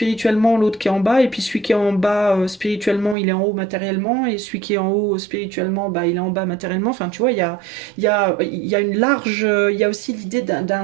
l'autre qui est en bas, et puis celui qui est en bas spirituellement, il est en haut matériellement, et celui qui est en haut spirituellement, bah, il est en bas matériellement. Enfin, tu vois, il y a une large, il y a aussi l'idée d'un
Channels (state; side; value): drops out; left; at 3.2 s